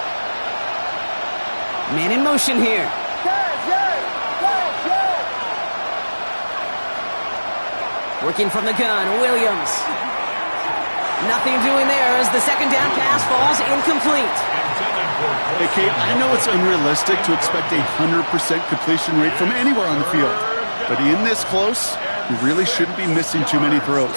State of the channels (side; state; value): both; inverted; correlation -1.00